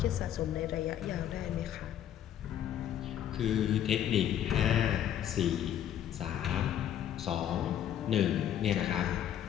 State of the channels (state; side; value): quieter; right; 10.5 dB